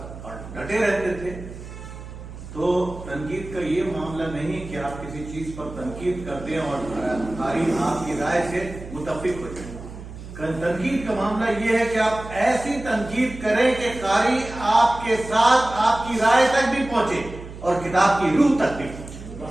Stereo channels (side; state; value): right; noise; hum, 13 dB below the sound